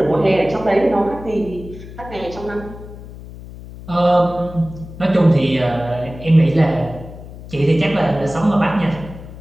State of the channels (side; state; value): left; noise; hum, 15 dB below the sound